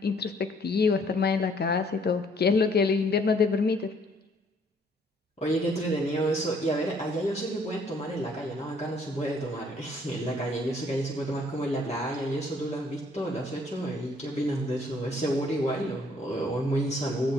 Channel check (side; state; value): both; normal; correlation 0.63